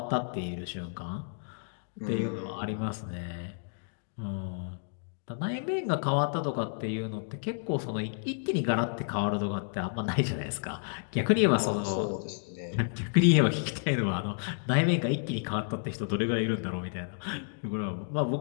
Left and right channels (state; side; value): silent; right; digital silence